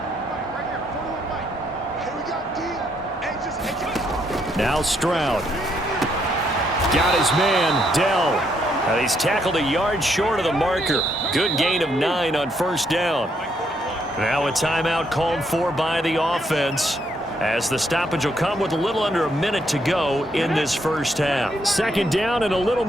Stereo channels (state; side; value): normal; both; correlation 0.74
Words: Now Stroud. Got his man, Dell. And he's tackled a yard short of the marker. Good gain of 9 on first down. Now a timeout called for by the offense, as the stoppage will come with a little under a minute to go in this first half. Second down and a little